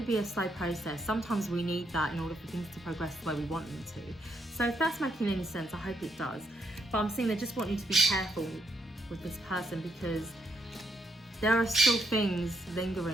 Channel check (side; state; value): both; normal; correlation 0.74